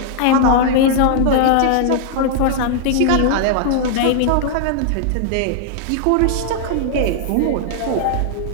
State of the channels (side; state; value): both; different; correlation -0.01